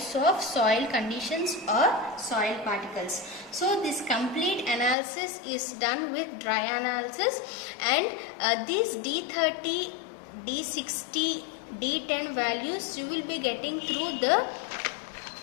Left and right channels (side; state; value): right; drops out; at 5.0 s